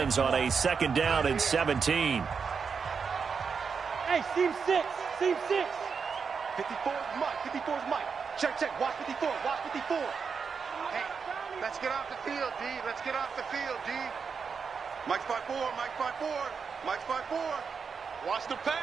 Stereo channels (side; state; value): left; quieter; 5.8 dB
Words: on a 2nd down and 17. Hey, seam 6. 54 is Mike. 54 is Mike. Check. Watch 54. Hey, let's get off the field, D. Let's get off the field, D. Mike's by 4. Mike's by 4. Watch the